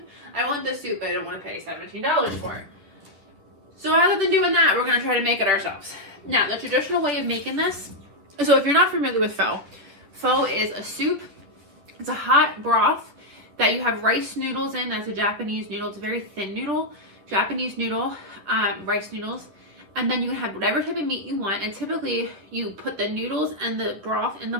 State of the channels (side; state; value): left; late; 11 ms